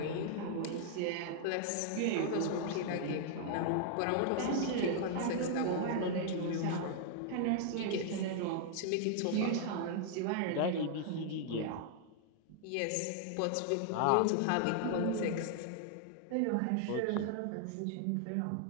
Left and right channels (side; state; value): both; different; correlation -0.01